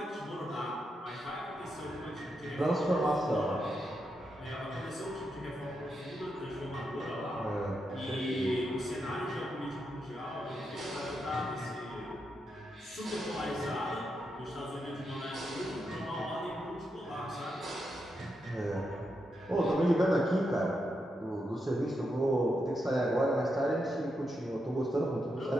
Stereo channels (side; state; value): both; normal; correlation 0.84